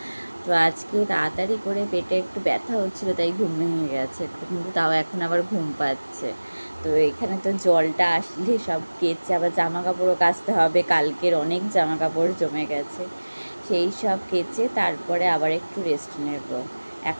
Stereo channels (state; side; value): inverted; both; correlation -1.00